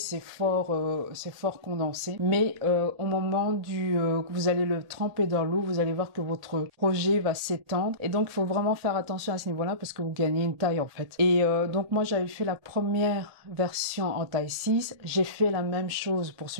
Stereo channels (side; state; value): left; late; 1.8 ms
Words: fort condensé, mais au moment que vous allez le tremper dans l'eau, vous allez voir que votre projet va s'étendre. Et donc il faut vraiment faire attention à ce niveau-là parce que vous gagnez une taille en fait. Et donc moi j'avais fait la première version en taille 6, j'ai fait la même chose pour